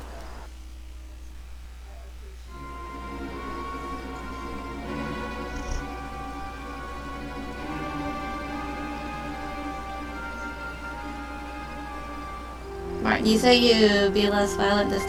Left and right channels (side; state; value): both; identical; correlation 1.00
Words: Martin, you say you be less violent this